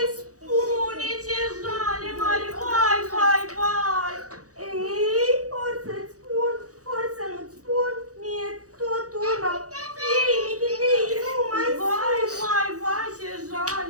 spune, ce jale mare, vai, vai, vai! Ei, ori să-ți spun, ori să nu-ți spun, mie tot una! Ei, michitei, nu mai Vai, vai, vai, ce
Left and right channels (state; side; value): late; left; 0.66 ms